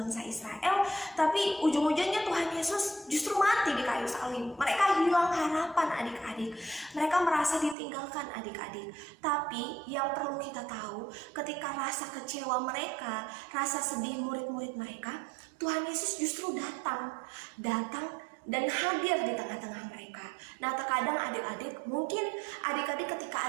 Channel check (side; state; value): left; drops out; at 7.8 s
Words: Israel, tapi ujung-ujungnya Tuhan Yesus justru mati di kayu salib. Mereka hilang harapan adik-adik, mereka merasa ditinggalkan adik-adik. Tapi yang perlu kita tahu, ketika rasa kecewa mereka, rasa sedih murid-murid mereka, Tuhan Yesus justru datang dan hadir di tengah-tengah mereka. Nah, terkadang adik-adik, mungkin adik-adik